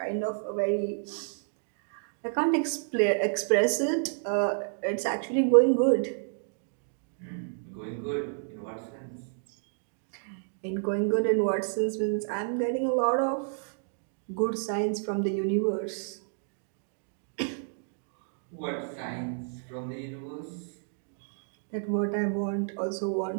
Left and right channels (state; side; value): silent; left; digital silence